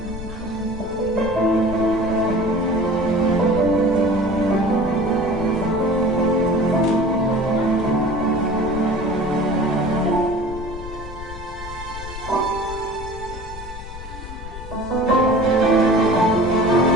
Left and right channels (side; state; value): left; noise; rumble, 11 dB below the sound